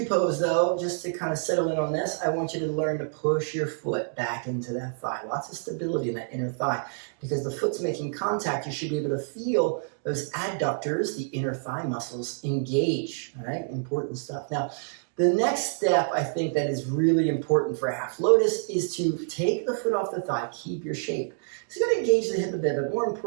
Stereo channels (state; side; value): silent; left; digital silence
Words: pose though, just to kind of settle in on this, I want you to learn to push your foot back into that thigh. Lots of stability in that inner thigh. Because the foot's making contact, you should be able to feel those adductors, the inner thigh muscles, engage. All right, important stuff. Now, the next step I think that is really important for half lotus is to take the foot off the thigh, keep your shape. It's going to engage the hip a bit, but more